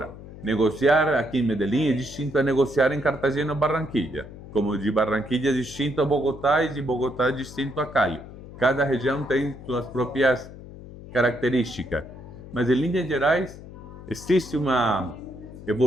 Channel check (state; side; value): noise; left; hum, 15 dB below the sound